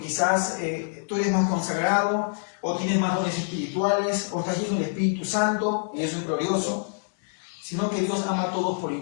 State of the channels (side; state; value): right; silent; digital silence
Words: tú eres más consagrado, o tienes más dones espirituales, o estás lleno del Espíritu Santo, y eso es glorioso, sino que Dios ama a todos por